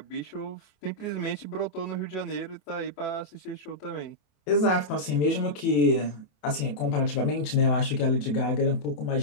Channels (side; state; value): right; late; 27 ms